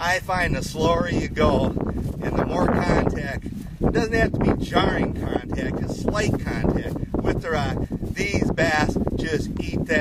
find the slower you go and the more contact, it doesn't have to be jarring contact, just slight contact with the rock. These bass just eat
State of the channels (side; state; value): both; identical; correlation 1.00